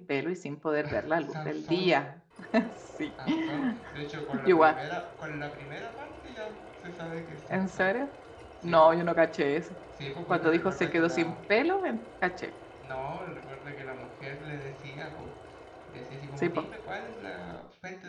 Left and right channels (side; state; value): both; identical; correlation 1.00